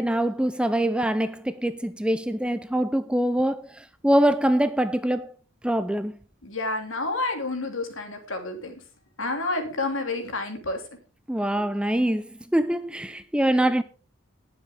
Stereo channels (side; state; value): both; normal; correlation 0.79